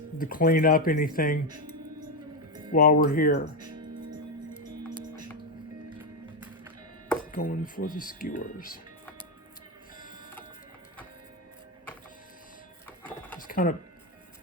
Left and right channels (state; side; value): normal; both; correlation 0.08